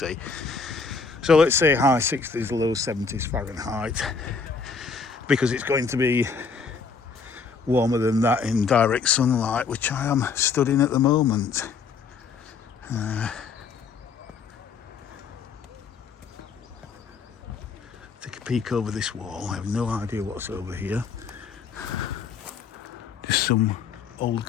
so let's say high 60s, low 70s Fahrenheit, because it's going to be warmer than that in direct sunlight, which I am stood in at the moment. Take a peek over this wall. I have no idea what's over here. Just some old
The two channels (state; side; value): quieter; right; 5.2 dB